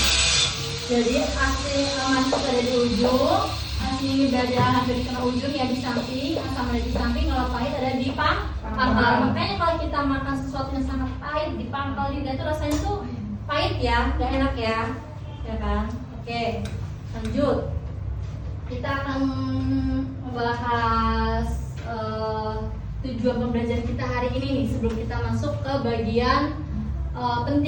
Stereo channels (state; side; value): identical; both; correlation 1.00